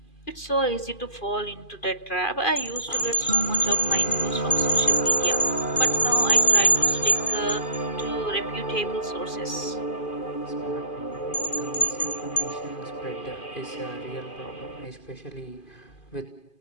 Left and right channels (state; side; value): late; right; 2.5 ms